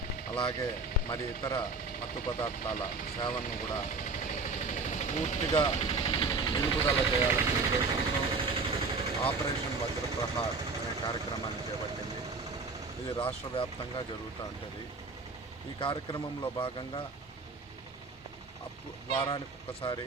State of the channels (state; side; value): quieter; left; 3.9 dB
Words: అలాగే మరి ఇతర మత్తు పదార్థాల సేవలను కూడా పూర్తిగా నిలుపుదల చేయాలనే ఉద్దేశంతో ఆపరేషన్ వజ్రప్రహార్ అనే కార్యక్రమాన్ని చేపట్టింది. ఇది రాష్ట్ర వ్యాప్తంగా జరుగుతూ ఉంటుంది. ఈ కార్యక్రమంలో భాగంగా వారానికి ఒక్కసారి